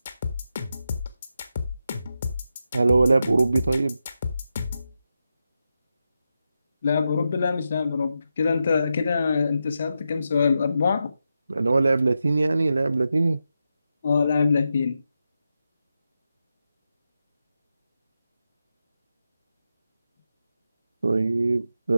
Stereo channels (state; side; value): inverted; both; correlation -0.88